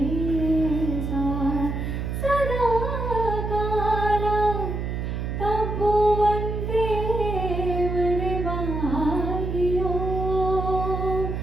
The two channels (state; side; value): noise; right; hum, 3 dB below the sound